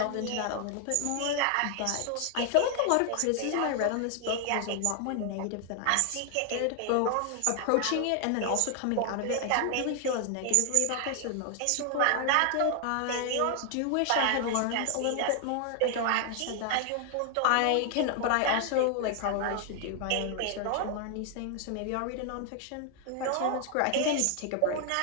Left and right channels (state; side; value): different; both; correlation 0.00